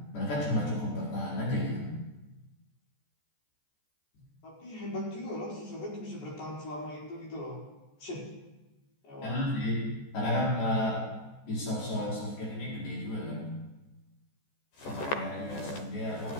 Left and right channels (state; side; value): late; right; 14 ms